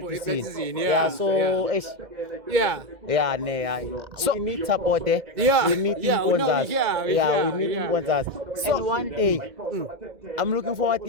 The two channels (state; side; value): late; left; 2.1 ms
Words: So we need support. We need sponsors. We need sponsors. And one day I'm looking forward